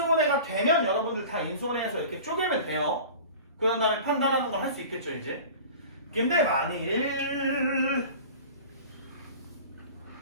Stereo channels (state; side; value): inverted; both; correlation -0.39